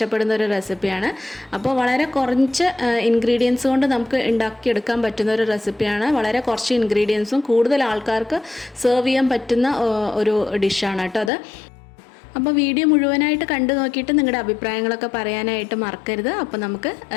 ഒരു റെസിപ്പിയാണ്. അപ്പോൾ വളരെ കുറച്ച് ഇൻഗ്രീഡിയൻസ് കൊണ്ട് നമുക്ക് ഉണ്ടാക്കിയെടുക്കാൻ പറ്റുന്ന ഒരു റെസിപ്പിയാണ്. വളരെ കുറച്ച് ഇൻഗ്രീഡിയൻസും കൂടുതൽ ആൾക്കാർക്ക് സെർവ് ചെയ്യാൻ പറ്റുന്ന ഒരു ഡിഷാണ് കേട്ടോ അത്. അപ്പോൾ വീഡിയോ മുഴുവനായിട്ട് കണ്ടു നോക്കിയിട്ട് നിങ്ങളുടെ അഭിപ്രായങ്ങളൊക്കെ പറയാനായിട്ട് മറക്കരുത്. അപ്പോൾ നമുക്ക്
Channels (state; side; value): drops out; right; at 11.3 s